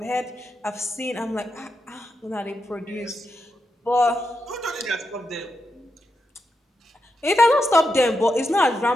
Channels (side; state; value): both; normal; correlation 0.86